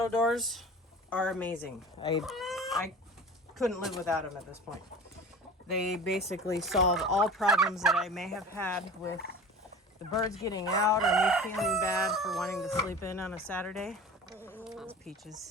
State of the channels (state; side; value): normal; both; correlation 0.37